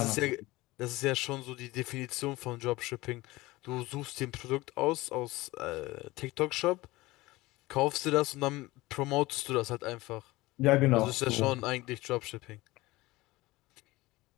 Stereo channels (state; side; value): quieter; right; 19.8 dB